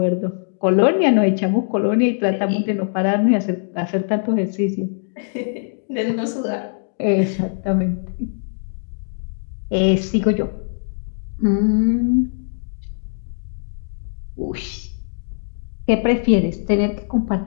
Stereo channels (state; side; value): silent; right; digital silence